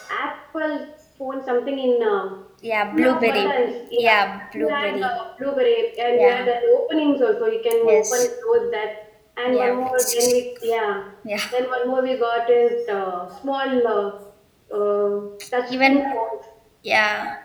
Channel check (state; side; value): identical; both; correlation 1.00